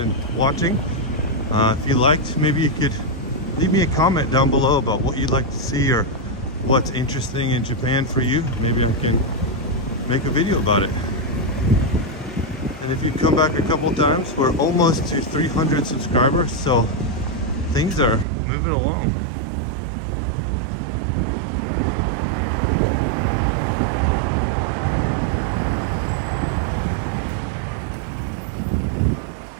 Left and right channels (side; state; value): left; drops out; at 18.2 s